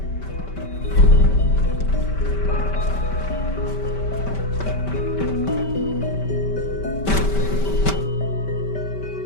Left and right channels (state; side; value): late; right; 5.2 ms